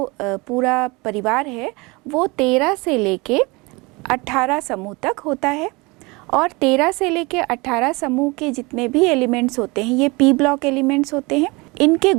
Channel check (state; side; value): quieter; left; 25.4 dB